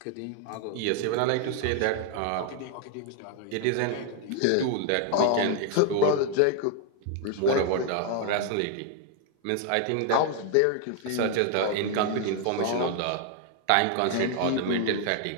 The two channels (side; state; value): both; different; correlation 0.00